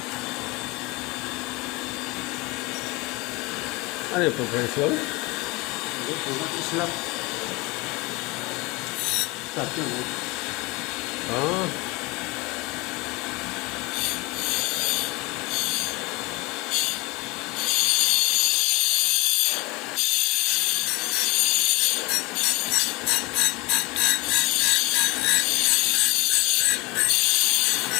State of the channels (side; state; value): right; quieter; 24.6 dB